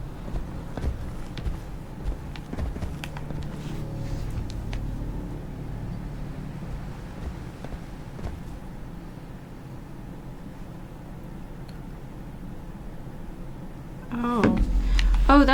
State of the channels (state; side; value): identical; both; correlation 1.00